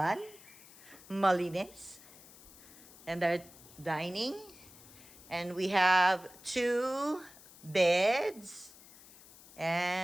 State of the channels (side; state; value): left; noise; hiss, 21 dB below the sound